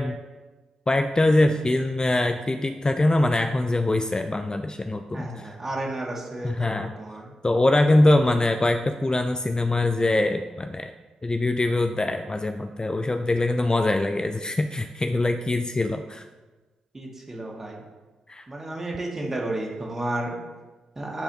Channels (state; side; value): normal; both; correlation 0.94